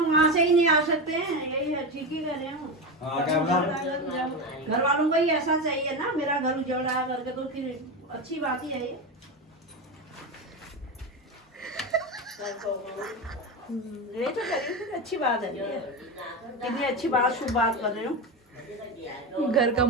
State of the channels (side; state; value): both; normal; correlation 0.18